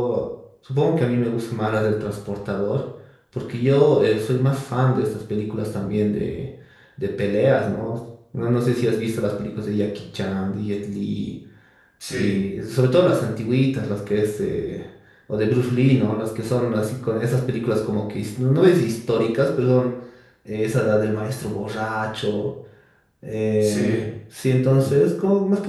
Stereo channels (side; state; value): both; identical; correlation 1.00